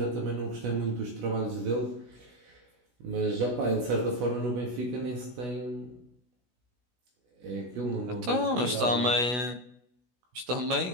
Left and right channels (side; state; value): left; late; 16 ms